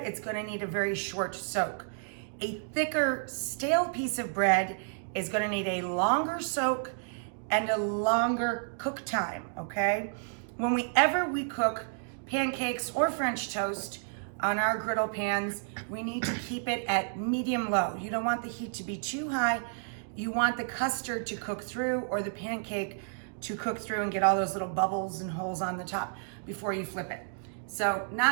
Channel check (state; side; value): silent; left; digital silence